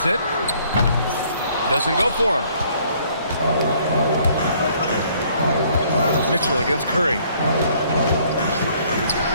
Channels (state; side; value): inverted; both; correlation -0.62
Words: it. Doesn't go for him. Mitchell against Curry.